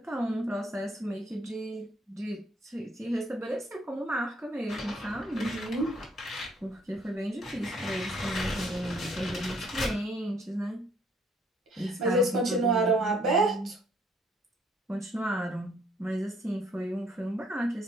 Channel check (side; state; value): both; normal; correlation 0.64